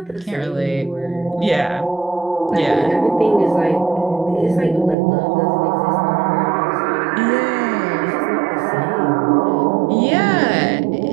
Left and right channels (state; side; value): drops out; left; at 5.0 s